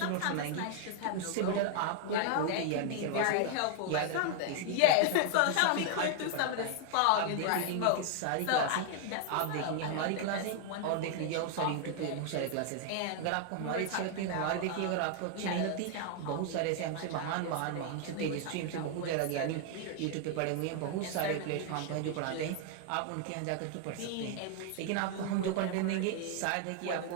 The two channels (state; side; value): different; both; correlation 0.00